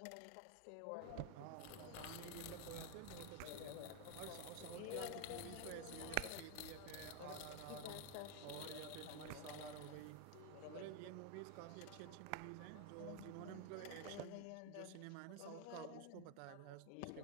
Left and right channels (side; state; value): both; different; correlation 0.01